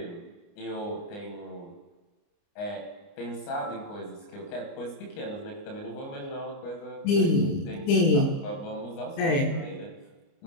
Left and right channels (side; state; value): right; late; 29 ms